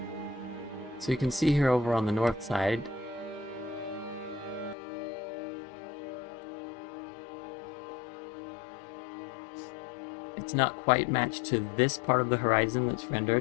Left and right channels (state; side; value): drops out; right; at 4.8 s